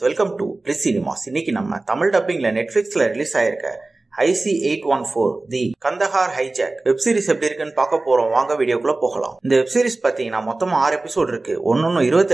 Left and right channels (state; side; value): quieter; left; 3.2 dB